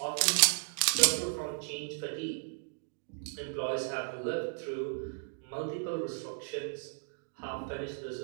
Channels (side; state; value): left; silent; digital silence